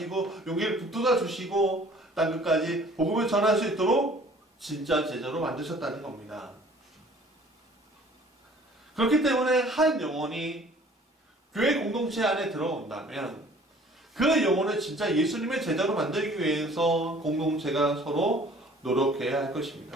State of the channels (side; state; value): both; normal; correlation 0.52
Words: 용기를 북돋아 주시고 땅끝까지 복음을 전할 수 있도록 진짜 제자로 만드셨다는 겁니다. 그렇기 때문에 한 영혼이 교회 공동체 안에 들어온다면 그 영혼을 진짜 예수님의 제자로 만들기 위해서 공동체가 서로 노력해야 할